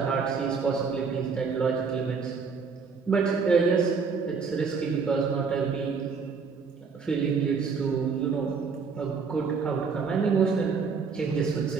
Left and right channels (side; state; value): left; quieter; 5.3 dB